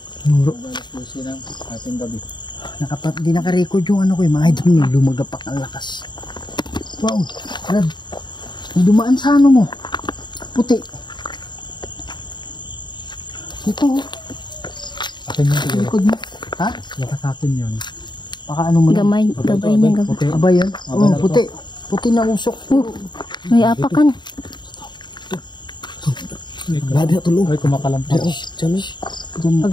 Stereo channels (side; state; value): right; late; 0.22 ms